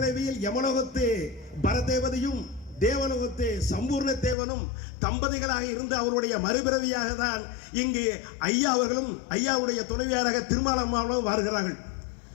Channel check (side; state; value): right; drops out; at 4.4 s